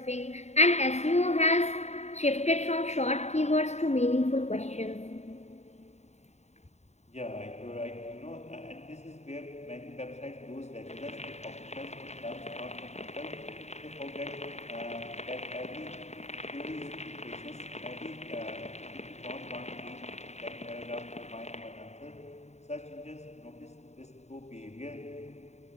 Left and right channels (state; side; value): late; right; 0.32 ms